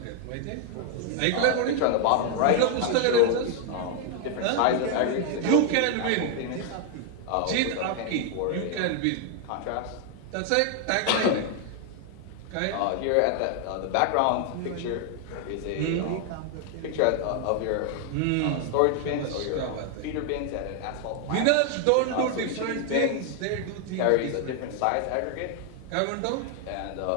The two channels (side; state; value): both; different; correlation 0.00